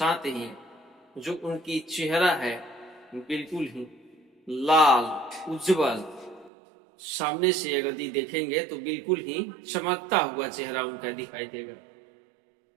ही जो उनकी चेहरा है बिल्कुल ही लाल उज्जवल, सामने से यदि देखेंगे तो बिल्कुल ही चमकता हुआ चेहरा उनका दिखाई देगा।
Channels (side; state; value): left; drops out; at 6.5 s